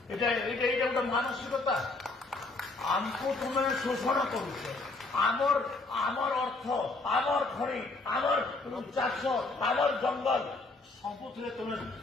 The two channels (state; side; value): quieter; right; 3.3 dB